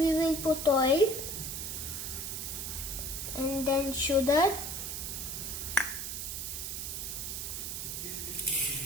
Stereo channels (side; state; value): right; noise; hiss, 4 dB below the sound